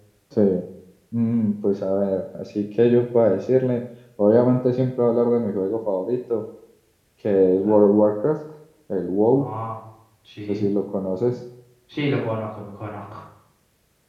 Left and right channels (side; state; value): both; identical; correlation 1.00